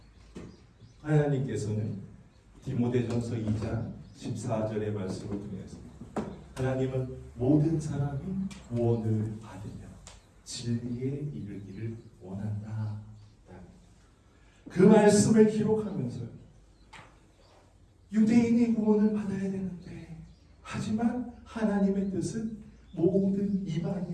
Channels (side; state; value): both; identical; correlation 1.00